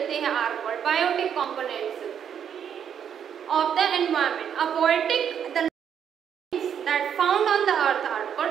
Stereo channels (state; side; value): quieter; left; 8.5 dB